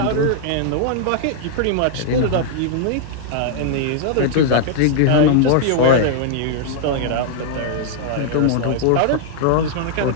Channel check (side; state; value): both; different; correlation -0.01